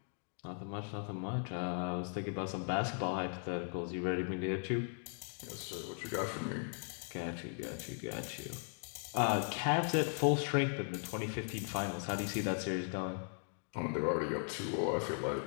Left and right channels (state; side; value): silent; right; 52 dB below the other